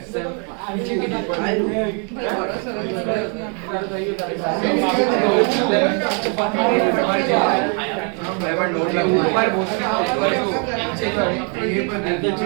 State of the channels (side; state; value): left; quieter; 38.6 dB